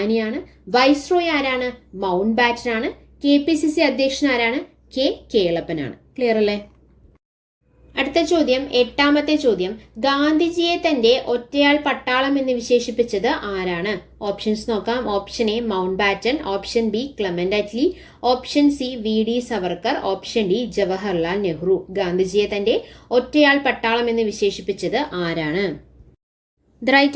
വൈസ്രോയ് ആരാണ്? മൗണ്ട് ബാറ്റൻ ആണ്. KPCC അധ്യക്ഷൻ ആരാണ്? കേളപ്പനാണ്. ക്ലിയർ അല്ലേ? അടുത്ത ചോദ്യം, 8ാമത്തെ ചോദ്യം. ഗാന്ധിജിയെ തന്റെ ഒറ്റയാൾ പട്ടാളം എന്ന് വിശേഷിപ്പിച്ചത് ആരാണ്? ഓപ്ഷൻസ് നോക്കാം. Option A Mountbatten, option B Clement Attlee, option C VD Savarkar, option D Jawaharlal Nehru. ഗാന്ധിജിയെ തന്റെ ഒറ്റയാൾ പട്ടാളം എന്ന് വിശേഷിപ്പിച്ചത് ആരാണ്? The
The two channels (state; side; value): identical; both; correlation 1.00